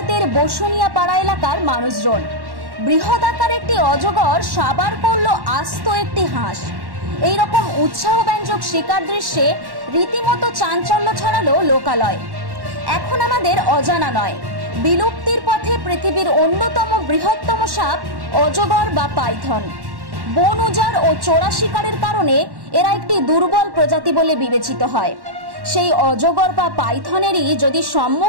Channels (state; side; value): late; left; 1.1 ms